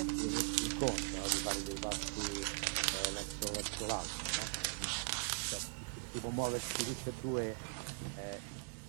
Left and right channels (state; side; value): silent; left; digital silence